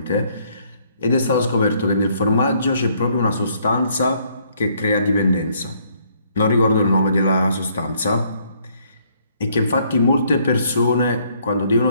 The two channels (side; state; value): both; inverted; correlation -0.67